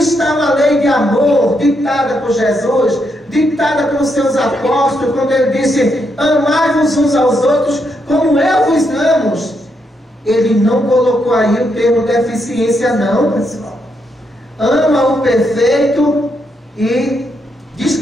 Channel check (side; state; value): both; normal; correlation 0.79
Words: uma lei de amor ditada por Jesus, ditada pelos seus apóstolos, quando ele disse: amai-vos uns aos outros como eu vos amo. Ele não colocou aí o termo deficiência não, pessoal. Ama o perfeito e